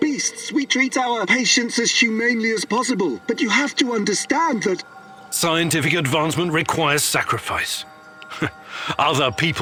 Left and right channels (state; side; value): identical; both; correlation 1.00